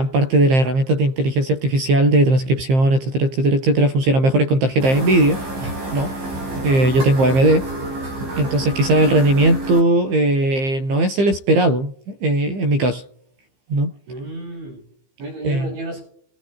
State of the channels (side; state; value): left; late; 15 ms